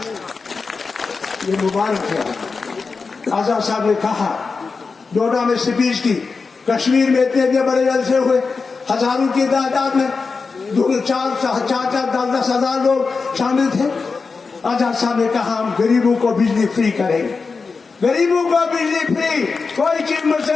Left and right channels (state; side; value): quieter; right; 4.6 dB